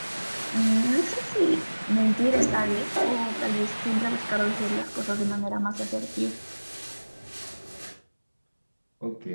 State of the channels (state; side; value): inverted; both; correlation -1.00